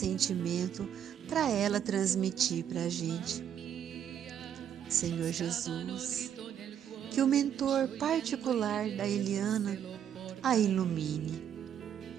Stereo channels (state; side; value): quieter; left; 9.3 dB